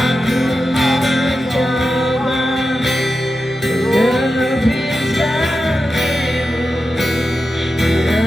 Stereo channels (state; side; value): noise; right; hum, 28 dB below the sound